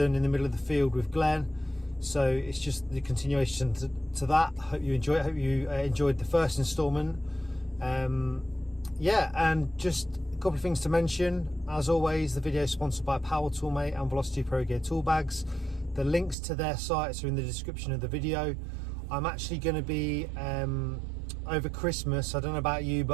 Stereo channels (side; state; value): left; drops out; at 16.4 s